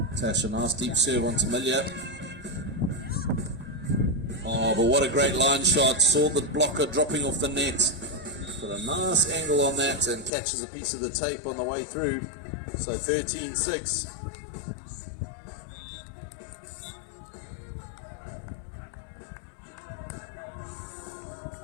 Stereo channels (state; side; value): drops out; right; at 10.3 s